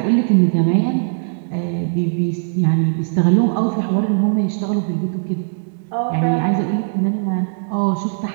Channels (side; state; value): left; silent; digital silence